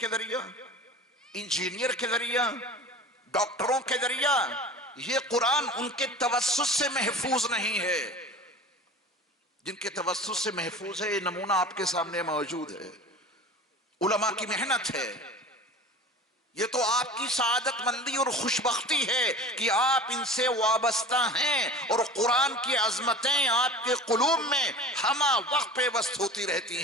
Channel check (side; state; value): both; normal; correlation 0.38